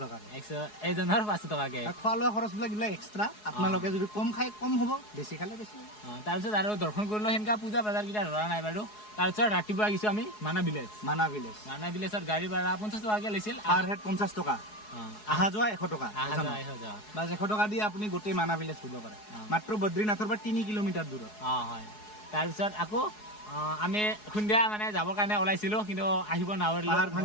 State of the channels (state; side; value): late; right; 4.7 ms